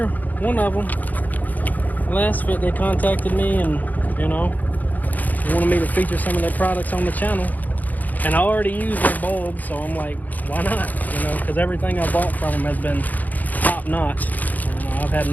One of them. LASFIT, they contacted me and, you know, they wanted me to feature some of their products on the channel. And I already use their bulbs, so I'm like, why not? You know, because everything I bought from them has been top notch. And I've had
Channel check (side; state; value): right; late; 0.081 ms